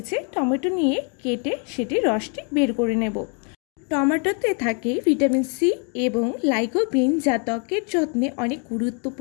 টমেটো নিয়ে কেটে সেটি রসটি বের করে নেব। টমেটোতে থাকে ভিটামিন সি এবং লাইকোপিন, যা ত্বকের যত্নে অনেক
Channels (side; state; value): right; quieter; 38.8 dB